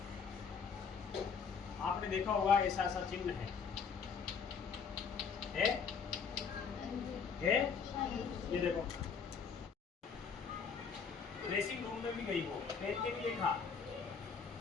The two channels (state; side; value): quieter; right; 6.0 dB